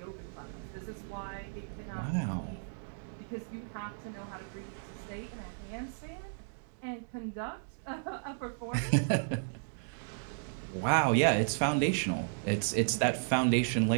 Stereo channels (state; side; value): silent; left; digital silence